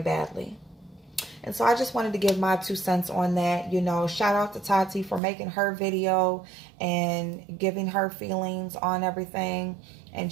And so I just wanted to give my 2 cents on that. You know, shout out to Tati for making her video and giving her feelings on everything. And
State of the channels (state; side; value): drops out; left; at 5.2 s